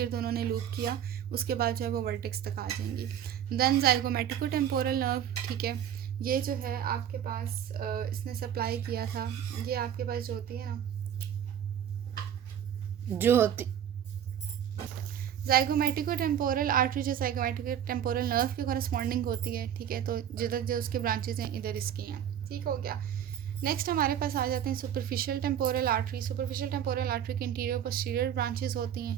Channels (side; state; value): left; quieter; 9.8 dB